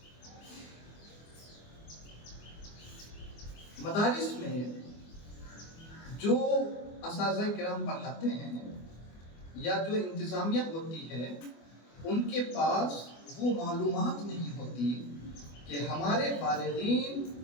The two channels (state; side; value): late; right; 24 ms